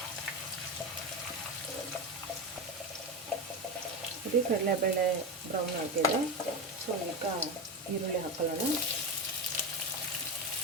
ಇದು ಕಡಲೆಬೇಳೆ ಬ್ರೌನ್ ಆಗಿದೆ. ಸೊ ಈಗ ಈರುಳ್ಳಿ ಹಾಕೊಳ್ಳೋಣ,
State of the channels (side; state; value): both; normal; correlation 0.18